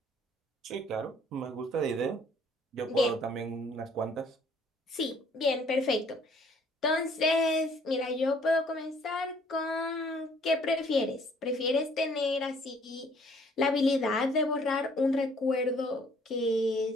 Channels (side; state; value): both; normal; correlation 0.60